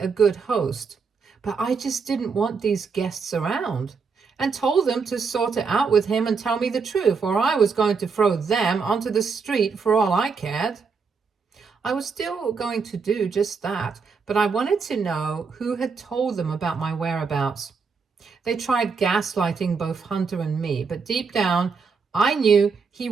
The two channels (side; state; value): left; quieter; 5.2 dB